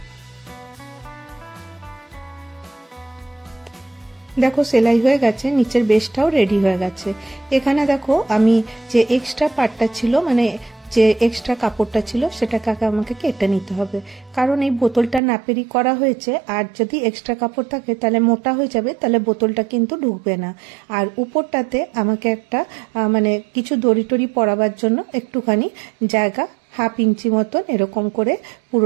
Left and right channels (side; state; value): left; drops out; at 15.2 s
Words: দেখো সেলাই হয়ে গেছে, নিচের বেসটাও রেডি হয়ে গেছে। এখানে দেখো আমি যে এক্সট্রা পার্টটা ছিল, মানে যে এক্সট্রা কাপড়টা ছিল সেটাকে আমাকে কেটে নিতে হবে, কারণ এই বোতলটা নাপেরই করা হয়েছে। আর যদি এক্সট্রা কাপড় থাকে তাহলে মোটা হয়ে যাবে, তাহলে বোতলটা কিন্তু ঢুকবে না। আর উপরটাতে আমাকে একটা মানে কিছু দড়ি টড়ি পরাবার জন্য একটুখানি জায়গা 1/2 ইঞ্চি মতন এরকম করে